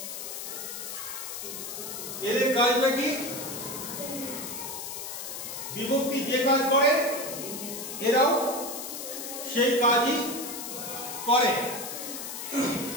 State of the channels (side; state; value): left; noise; hiss, 7 dB below the sound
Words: এদের কাজটা কি? বিভক্তি যে কাজ করে এরাও সেই কাজই করে।